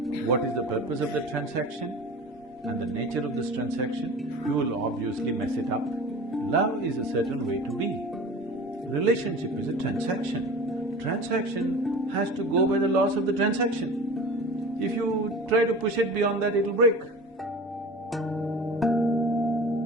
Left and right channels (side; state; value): both; normal; correlation 0.37